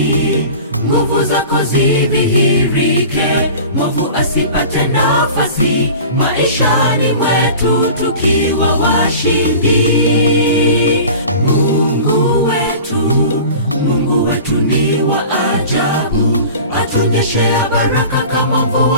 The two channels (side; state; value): both; inverted; correlation -0.40